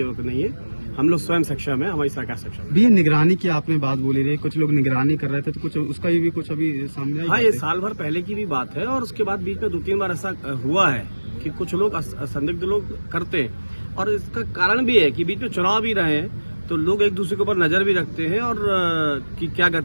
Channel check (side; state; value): both; inverted; correlation -1.00